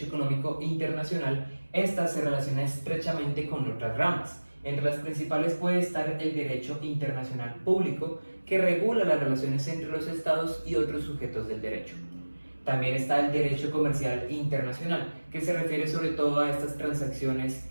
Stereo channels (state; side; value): inverted; both; correlation -1.00